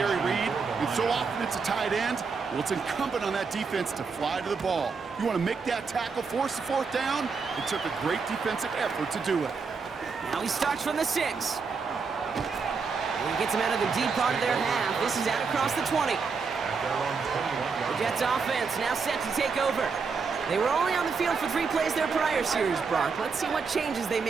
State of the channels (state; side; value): quieter; left; 5.1 dB